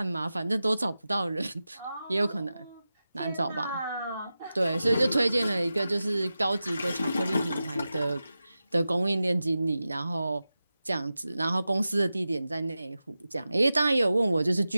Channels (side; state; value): both; inverted; correlation -0.93